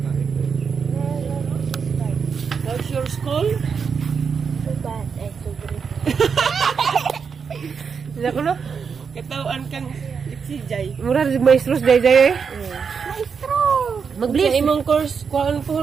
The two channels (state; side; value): quieter; left; 6.1 dB